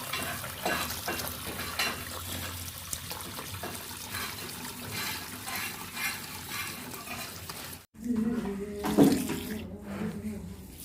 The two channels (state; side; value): identical; both; correlation 1.00